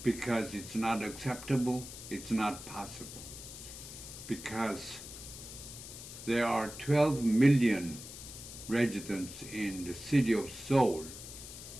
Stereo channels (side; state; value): left; noise; hiss, 12 dB below the sound